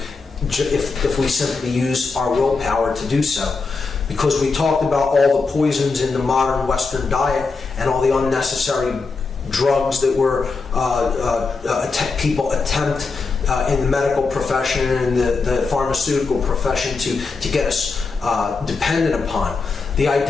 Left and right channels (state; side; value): quieter; right; 4.3 dB